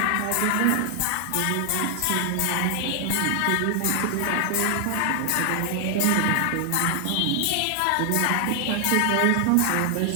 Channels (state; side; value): different; both; correlation 0.00